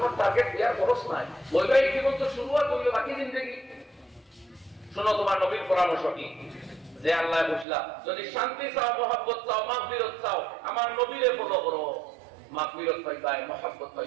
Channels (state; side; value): drops out; left; at 7.7 s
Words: টার্গেট বিয়ার খরচ নাই, বৈবাহিক জীবন তো শুরুয়াত হইল, বাকি জিন্দেগি। শোনো তোমার নবীর পরামর্শ কি, যে আল্লাহ বুঝলা, যদি শান্তি চাও, মহব্বত চাও, মাগফিরাত চাও, আমার নবীরে ফলো করো, মাগফিরাত পাইবাই, মহব্বত